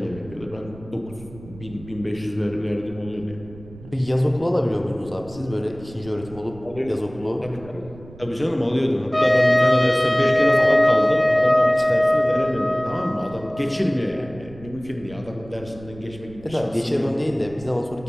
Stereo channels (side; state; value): right; noise; rumble, 18 dB below the sound